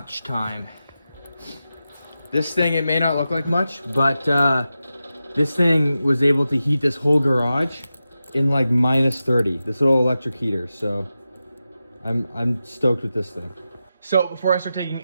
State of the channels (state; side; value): inverted; both; correlation -0.92